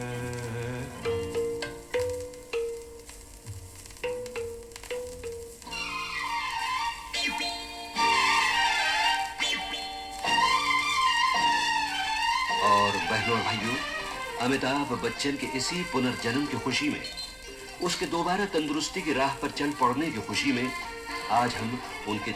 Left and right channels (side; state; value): both; identical; correlation 1.00